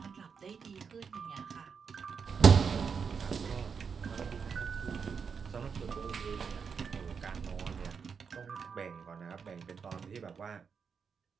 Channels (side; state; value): left; quieter; 6.1 dB